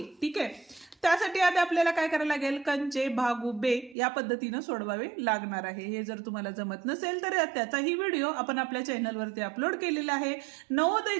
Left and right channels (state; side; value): drops out; left; at 4.0 s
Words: ठीक आहे, त्यासाठी आता आपल्याला काय करायला लागेल, कंचे भागू बे या पद्धतीने सोडवावे लागणार आहे। हे जर तुम्हाला जमत नसेल तर त्याचाही व्हिडिओ आपण आपल्या चॅनलवरती अपलोड केलेला आहे।